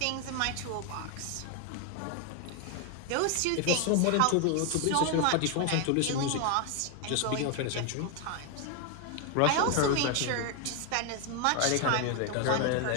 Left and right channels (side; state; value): both; different; correlation 0.01